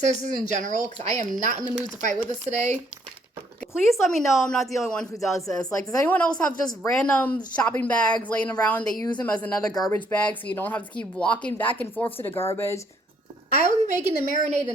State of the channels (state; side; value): normal; both; correlation 0.68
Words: in general, because I am not in the mood to fight with this today. Please let me know I'm not the only one who does this. Like, does anyone else have just random shopping bags laying around? They use them as another garbage bag, so you don't have to keep walking back and forth to the garbage. I will be making the marinade